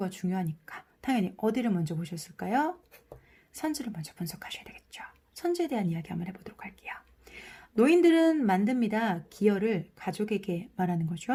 중요하니까 당연히 어디를 먼저 보셨을까요? 선지를 먼저 분석하셔야 되겠죠. 선지에 대한 이야기 한번 해보도록 할게요. 노인들은 만듭니다. 기여를 가족에게 말하는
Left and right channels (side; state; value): both; identical; correlation 1.00